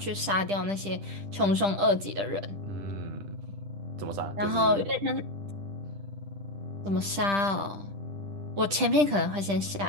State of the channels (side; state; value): left; late; 10 ms